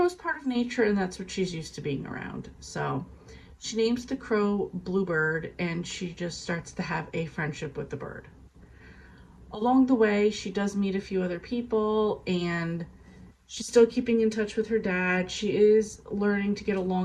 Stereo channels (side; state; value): both; identical; correlation 1.00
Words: part of nature and that's what she's used to being around. So she names the crow Bluebird and she just starts to have a friendship with the bird. Along the way, she does meet a few other people, and she's still keeping in touch with her dad. She is learning to get